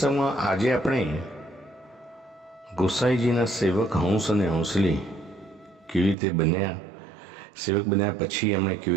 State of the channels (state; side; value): drops out; left; at 6.2 s